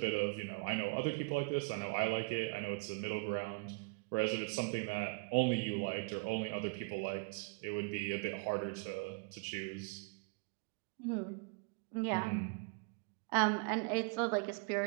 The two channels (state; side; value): quieter; left; 32.4 dB